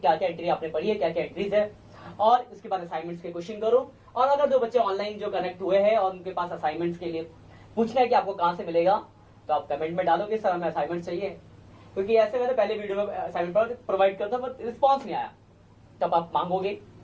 क्या एंट्री आपने पढ़ी है, क्या क्या एंट्रीज है, और इसके बाद असाइनमेंट्स के क्वेश्चन करो। और अगर जो बच्चे ऑनलाइन जो कनेक्ट हुए हैं और उनके पास असाइनमेंट्स के लिए पूछना है कि आपको कहां से मिलेगा, तो आप कमेंट में डालोगे सर हमें असाइनमेंट चाहिए, क्योंकि ऐसे मैंने पहले वीडियो में असाइनमेंट प्रोवाइड करता बट रिस्पॉन्स नहीं आया, तब आप मांगोगे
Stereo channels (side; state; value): both; identical; correlation 1.00